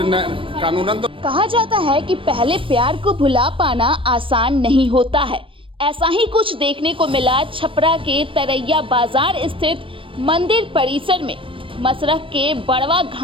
कानूनन तो कहा जाता है कि पहले प्यार को भुला पाना आसान नहीं होता है। ऐसा ही कुछ देखने को मिला छपरा के तरैया बाजार स्थित मंदिर परिसर में। मसरख के बड़वा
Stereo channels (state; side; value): late; left; 0.25 ms